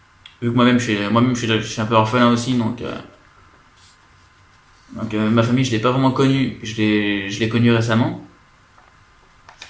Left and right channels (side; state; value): both; identical; correlation 1.00